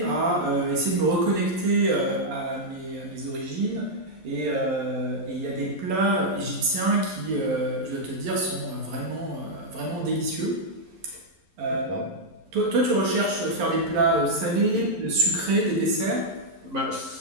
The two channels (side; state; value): left; late; 11 ms